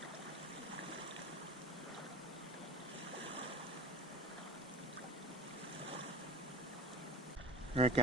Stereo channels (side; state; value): both; normal; correlation 0.37